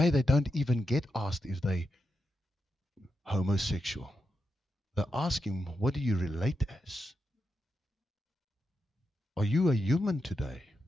they don't even get asked if they homosexual. They're asking, what do you relate as? Are you a human today?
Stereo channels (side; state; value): both; normal; correlation 0.86